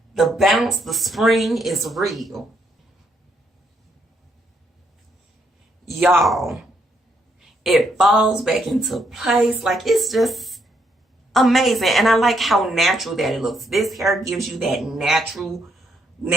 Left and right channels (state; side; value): normal; both; correlation 0.74